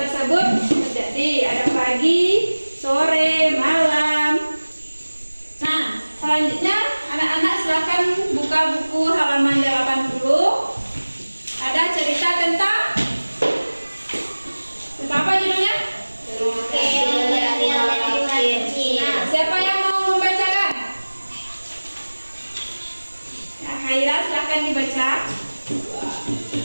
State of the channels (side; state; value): both; inverted; correlation -1.00